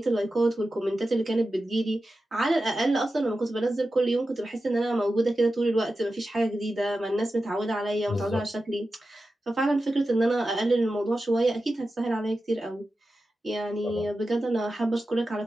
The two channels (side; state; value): both; normal; correlation 0.92